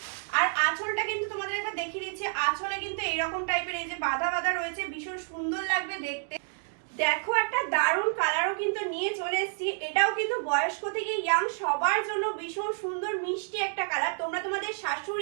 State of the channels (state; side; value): silent; left; 58 dB below the other